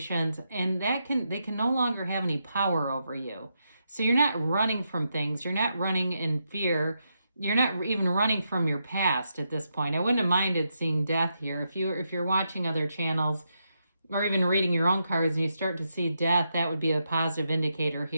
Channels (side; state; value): both; inverted; correlation -0.83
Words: and they can no longer have any power over you. So you're not running from things. You're not running in fear. You're not even running from your past at this point. I wouldn't have minded seeing death here. If you're watching other channels or even reading your own cards and you start to see death, that would be a positive indicator